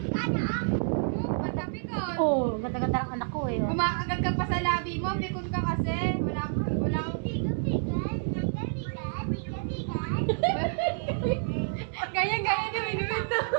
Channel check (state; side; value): silent; left; digital silence